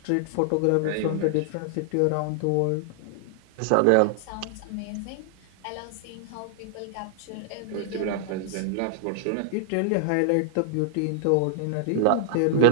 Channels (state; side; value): different; both; correlation -0.01